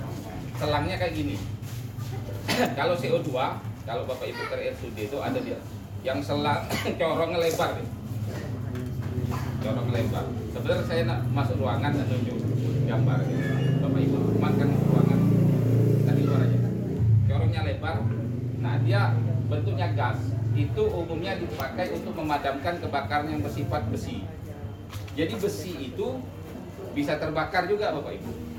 selangnya kayak gini. Kalau CO2, kalau Bapak Ibu ke RSUD itu ada dia yang selang corongnya lebar deh. Corong lebar. Sebenarnya saya nak masuk ruangan dan nunjuk gambar gitu. Bapak Ibu makan ruangan tadi luar aja. Corongnya lebar. Nah, dia bentuknya gas. Itu umumnya dipakai untuk memadamkan kebakaran yang bersifat besi. Jadi besi itu bisa terbakar juga Bapak Ibu.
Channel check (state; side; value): identical; both; correlation 1.00